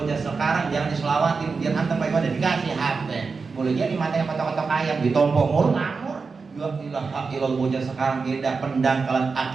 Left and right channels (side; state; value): left; quieter; 4.7 dB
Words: sekarang jangan diselawatin biar anteng baik ada dikasih HP boleh jadi matanya kotok-kotok ayam ditompok mulu ngamur. Ya ilaha illallah, bocah sekarang beda pendangkalan